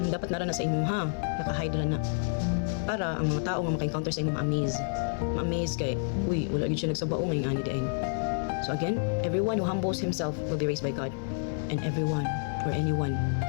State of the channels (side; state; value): right; silent; 58 dB below the other